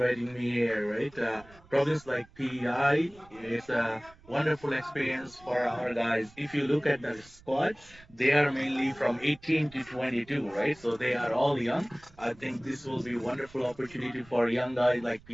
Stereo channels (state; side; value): noise; right; rumble, 25 dB below the sound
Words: me here, right? Province like PEI is a wonderful experience for our guys. If you look at the squad, they are mainly from 18 to 22, right? So they are all young. I think this will be a wonderful opportunity for young guys like